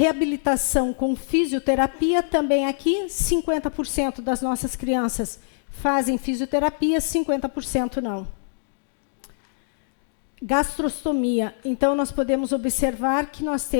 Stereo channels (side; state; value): right; silent; digital silence